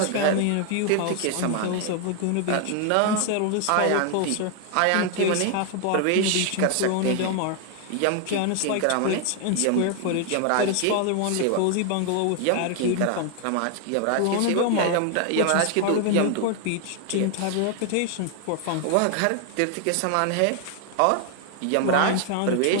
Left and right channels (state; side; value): different; both; correlation 0.00